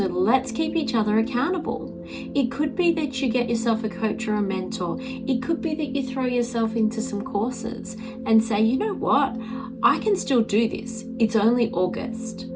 let's keep each other accountable. It could be that you get yourself a coach or a mentor. It could be that you throw yourself into some courses and say, you know what, I can still do this. It's only August.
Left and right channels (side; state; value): both; identical; correlation 1.00